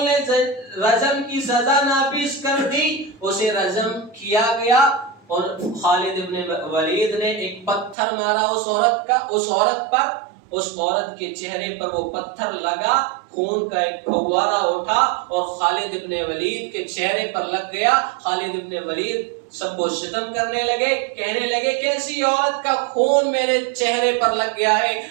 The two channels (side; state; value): left; drops out; at 8.0 s